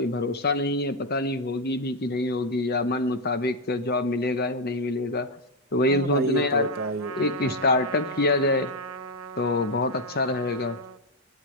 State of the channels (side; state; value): both; normal; correlation 0.03